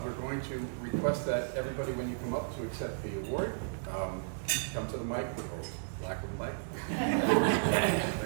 we're going to request that everybody, when you come up to accept the award, come to the mic, or lack of a mic,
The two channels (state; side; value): silent; left; 55 dB below the other